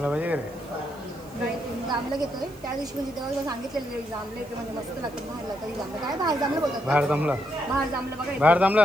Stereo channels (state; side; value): noise; right; hiss, 25 dB below the sound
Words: पाहिजे का रे? जांभलं घेतोय त्या दिवशी, म्हणजे तेव्हा सांगितलेलं जांभलं येते म्हणजे मस्त लागतं. बाहेरला तरी जांभलं काय बाहेर जांभलं बोलतात. बाहेर जमला बघा. बाहेर जमला